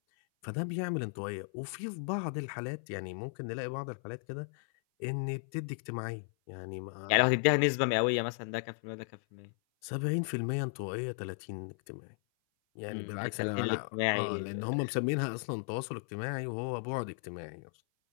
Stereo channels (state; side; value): silent; right; 54 dB below the other